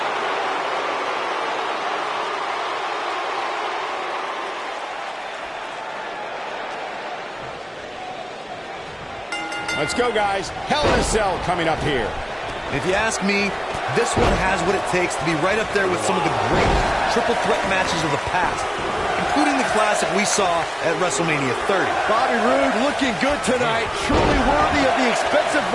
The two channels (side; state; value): both; identical; correlation 1.00